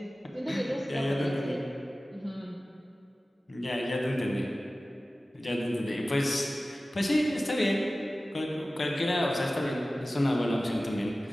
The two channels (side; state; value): both; normal; correlation 0.96